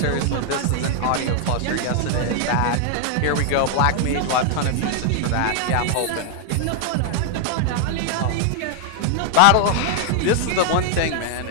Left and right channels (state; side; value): different; both; correlation 0.00